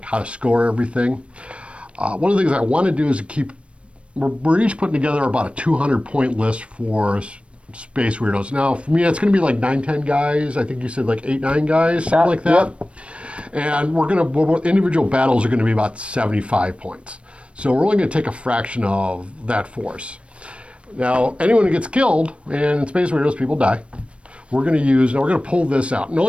how to score everything. One of the things I want to do is we're each putting together about a 200-point list for Space Weirdos. Now, for me, it's going to be like 9-10 guys. I think you said like 8-9 guys, something like that. Yep. And individual battles are going to be about 75 points. So we're only going to take a fraction of that force. Now, anyone who gets killed, and in Space Weirdos, people die, we're going to pull this out. And the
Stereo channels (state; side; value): late; left; 0.060 ms